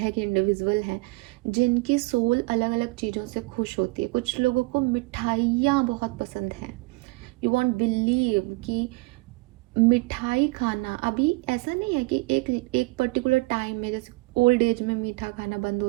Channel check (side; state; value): left; quieter; 25.2 dB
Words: के इंडिविजुअल हैं जिनकी सोल अलग अलग चीज़ों से खुश होती है। कुछ लोगों को मिठाइयाँ बहुत पसंद हैं। यू वॉन्ट बिलीव कि मिठाई खाना अभी ऐसा नहीं है कि एक पर्टिकुलर टाइम में, जैसे ओल्ड एज में मीठा खाना बंद